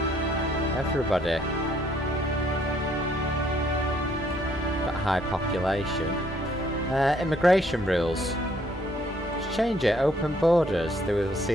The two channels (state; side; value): normal; both; correlation 0.66